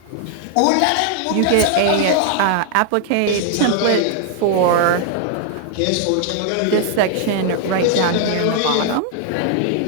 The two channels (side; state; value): both; different; correlation 0.00